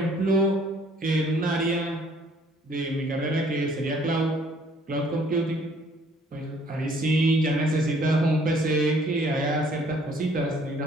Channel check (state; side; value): normal; both; correlation 0.61